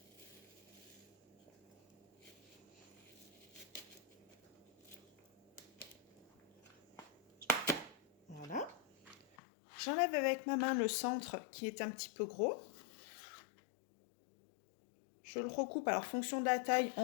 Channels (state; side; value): drops out; right; at 9.3 s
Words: Voilà. J'enlève avec ma main le centre qui est un petit peu gros. Je le recoupe, alors fonction de la taille,